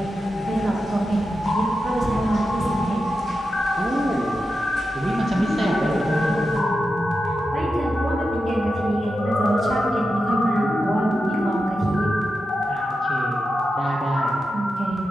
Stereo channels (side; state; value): both; normal; correlation 0.89